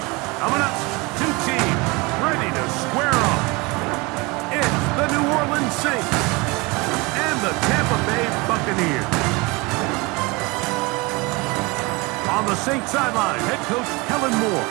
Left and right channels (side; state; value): left; quieter; 25.8 dB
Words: Coming up, two teams ready to square off. It's the New Orleans Saints and the Tampa Bay Buccaneers. On the Saints sideline, head coach Kellen Moore.